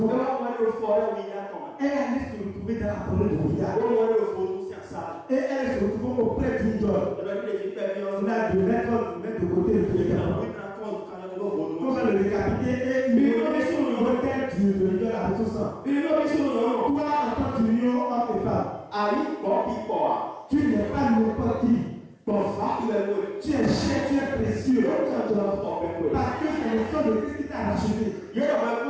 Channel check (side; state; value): both; identical; correlation 1.00